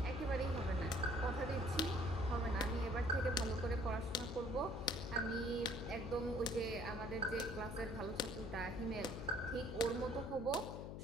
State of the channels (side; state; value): left; noise; hum, 7 dB below the sound